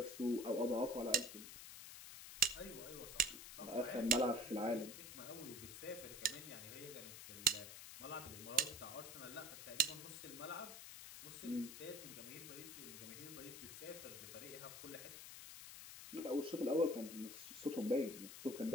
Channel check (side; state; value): left; noise; hiss, 11 dB below the sound